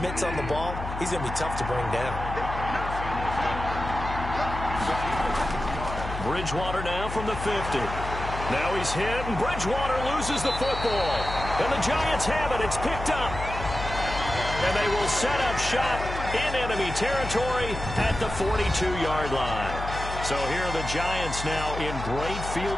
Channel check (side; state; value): left; noise; hum, 7 dB below the sound